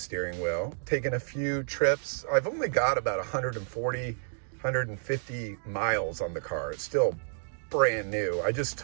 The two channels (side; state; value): left; silent; digital silence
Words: wheel, taken a few trips, I've only got about 150 miles on the car. It's still brand new. I just